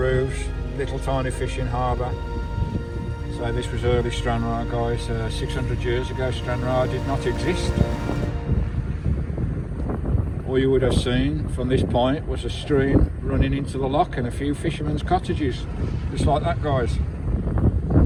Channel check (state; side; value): identical; both; correlation 1.00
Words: little tiny fishing harbour. So this was early Stranraer guys. 600 years ago Stranraer did not exist. All you would have seen from this point was a stream running into the loch and a few fishermen's cottages, just like that guys,